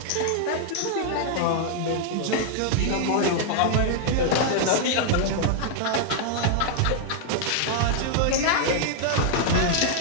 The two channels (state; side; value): different; both; correlation -0.01